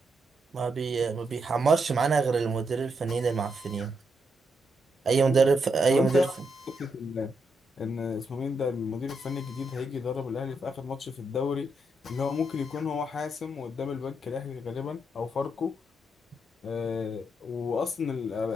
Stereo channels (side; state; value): both; normal; correlation 0.81